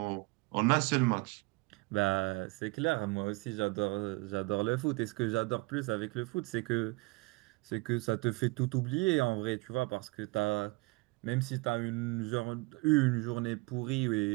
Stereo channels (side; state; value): left; quieter; 25.7 dB